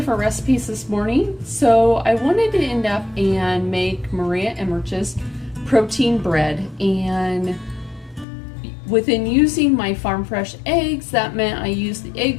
recipes this morning. So I wanted to end up and make Maria Emmerich's protein bread, and within using my farm fresh eggs, that meant I used the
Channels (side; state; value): right; drops out; at 8.2 s